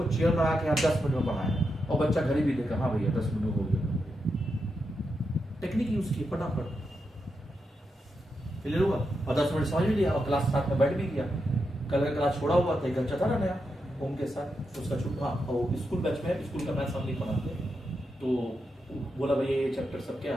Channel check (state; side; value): normal; both; correlation 0.85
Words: चेयर लगा के 10 मिनट में पढ़ाया और बच्चा घड़ी भी देखा, हाँ भैया 10 मिनट हो गया। टेक्निक यूज की फटाफट क्लियर हुआ और 10 मिनट समझ भी लिया और क्लास साथ में बैठ भी गया। कल का क्लास छोड़ा हुआ था, एक बच्चा था ना नया ओम के साथ, उसका छुट्टा और स्कूल बैच में स्कूल का मैथ्स हम नहीं पढ़ाते, तो बोला भैया ये चैप्टर सब क्या